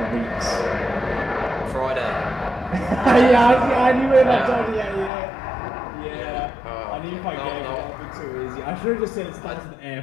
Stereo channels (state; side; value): drops out; right; at 5.1 s